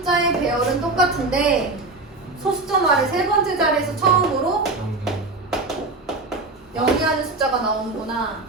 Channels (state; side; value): quieter; left; 3.3 dB